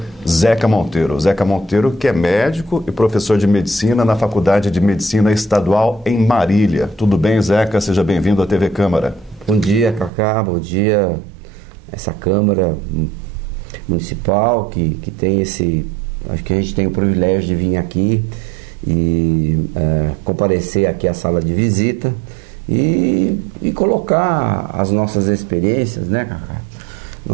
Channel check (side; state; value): left; drops out; at 10.1 s